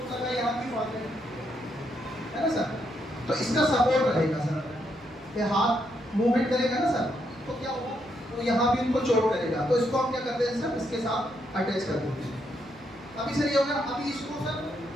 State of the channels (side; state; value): right; noise; hum, 25 dB below the sound